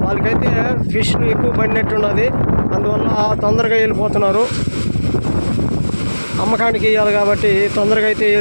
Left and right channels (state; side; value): inverted; both; correlation -1.00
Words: వాళ్ళకైతే ఫిష్లు ఎక్కువ పడినట్టున్నది, అందువల్ల తొందరగా వెళ్ళిపోతున్నారు. అమ్మకానికి ఇవ్వాలి కాబట్టి తొందరగా అయితే